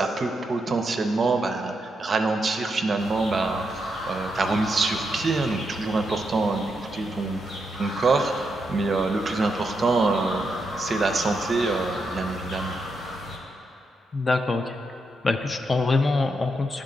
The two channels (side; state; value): both; normal; correlation 0.83